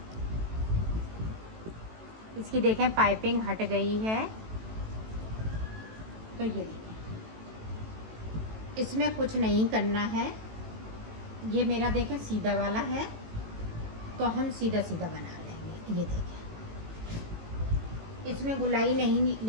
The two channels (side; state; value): left; late; 18 ms